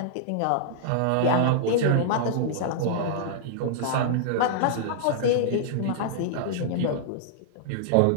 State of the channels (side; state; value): both; different; correlation -0.02